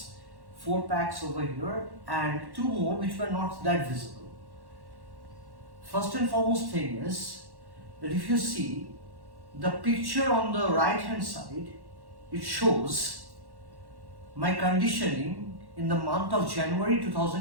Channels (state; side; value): late; left; 1.1 ms